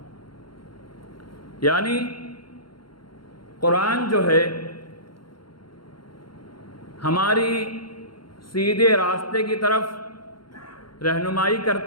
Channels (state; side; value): late; right; 0.73 ms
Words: یعنی قرآن جو ہے ہماری سیدھے راستے کی طرف رہنمائی